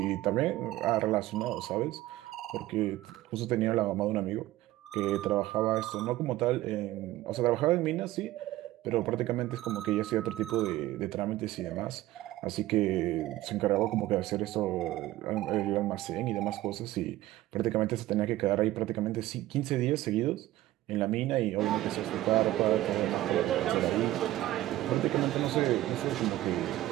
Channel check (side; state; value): left; quieter; 15.9 dB